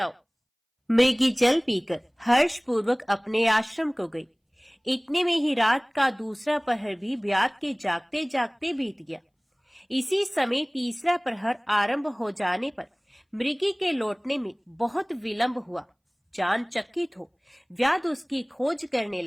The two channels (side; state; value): both; identical; correlation 1.00